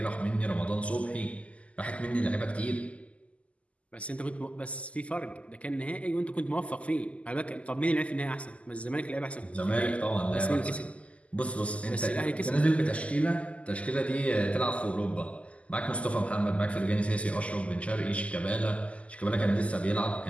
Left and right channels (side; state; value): right; late; 0.063 ms